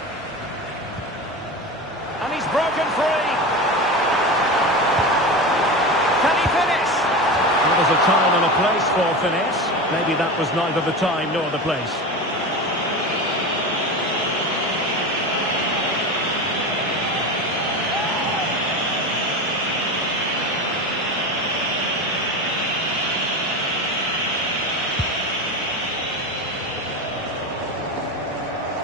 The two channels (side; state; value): both; normal; correlation 0.25